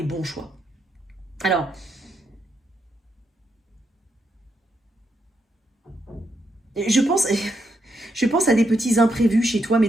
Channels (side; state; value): both; normal; correlation 0.80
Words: bons choix. Alors, je pense, je pense à des petits imprévus chez toi, mais